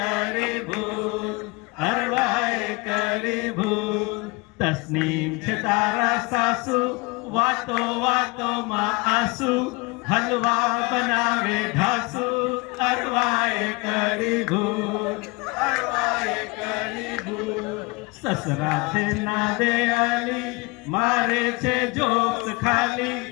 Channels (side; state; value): right; quieter; 26.3 dB